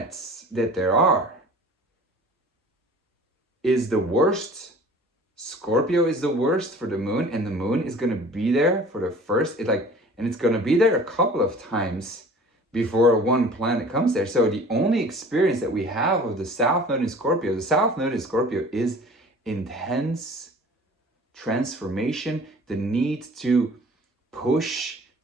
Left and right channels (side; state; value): both; normal; correlation 0.45